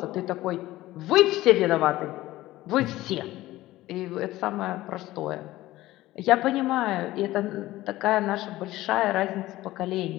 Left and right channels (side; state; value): right; quieter; 16.6 dB